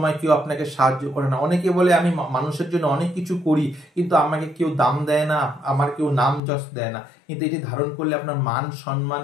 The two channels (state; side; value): drops out; right; at 6.4 s